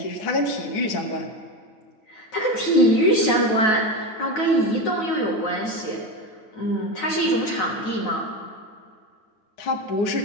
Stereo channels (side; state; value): right; late; 9.3 ms